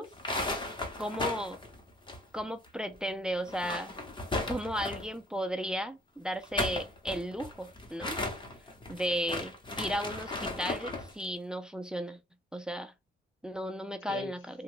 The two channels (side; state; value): both; normal; correlation 0.58